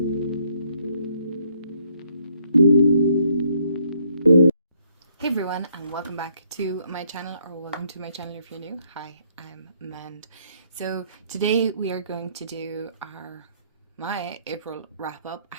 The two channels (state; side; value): inverted; both; correlation -0.70